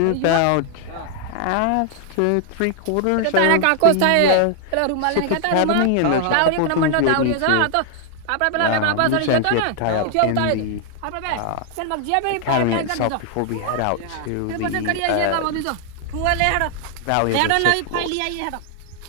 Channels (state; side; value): different; both; correlation 0.00